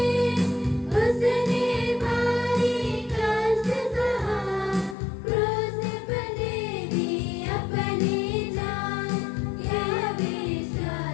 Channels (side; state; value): right; drops out; at 5.0 s